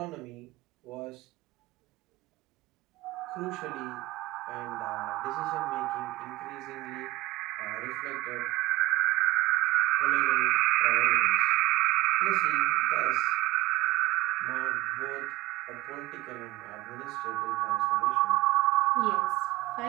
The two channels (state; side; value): quieter; left; 18.5 dB